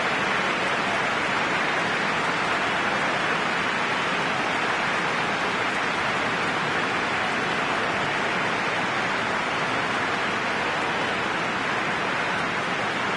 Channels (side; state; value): both; identical; correlation 1.00